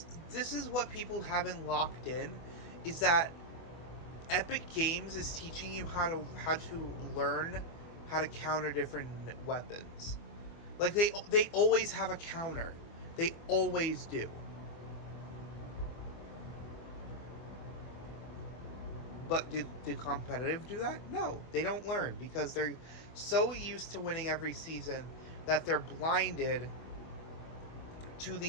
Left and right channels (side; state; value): right; late; 24 ms